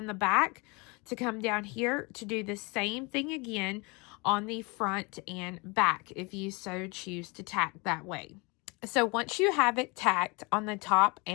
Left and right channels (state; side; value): quieter; right; 28.3 dB